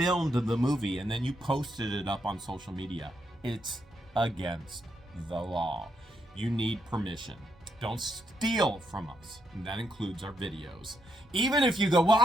the movie and then you posted it up on social media. It's against the law. You need permission. Don't steal from us. And that includes our videos. Even if you go, well,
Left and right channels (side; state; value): both; normal; correlation 0.78